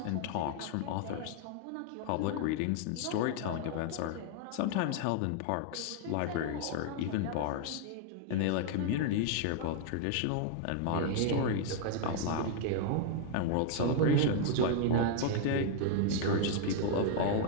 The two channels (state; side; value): different; both; correlation 0.00